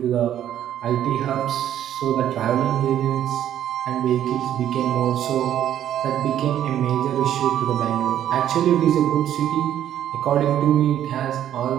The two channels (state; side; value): quieter; left; 11.0 dB